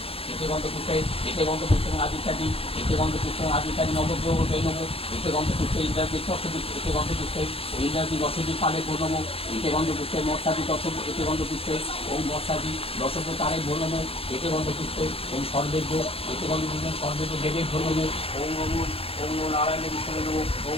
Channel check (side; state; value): right; late; 0.27 ms